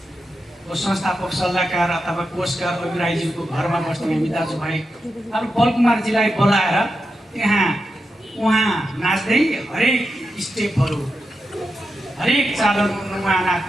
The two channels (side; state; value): both; normal; correlation 0.88